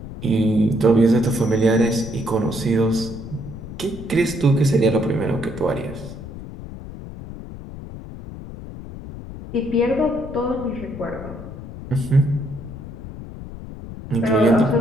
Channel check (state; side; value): noise; left; rumble, 12 dB below the sound